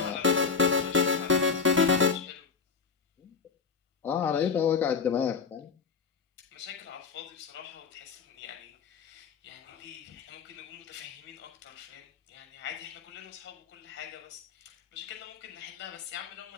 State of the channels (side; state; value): right; quieter; 5.5 dB